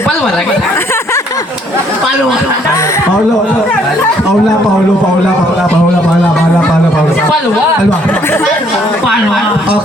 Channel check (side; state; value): both; normal; correlation 0.65